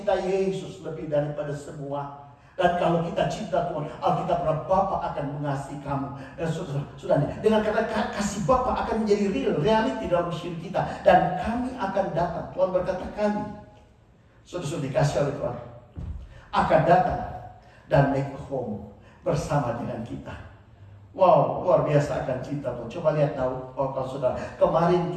Yesus lebih daripada semua. Dan kalau kita cinta Tuhan, Alkitab berkata Bapa akan mengasihi kamu. Dan sudah dengan kata kasih Bapa akan menjadi reality dalam hidup kita. Dan kami akan datang. Tuhan berkata kami, sudah dikasih oleh Tuhan, akan datang dan make home bersama dengan kita. Wow, luar biasa akan cinta Tuhan. Coba lihat Daud, kalau saudara. Kemarin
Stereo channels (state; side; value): identical; both; correlation 1.00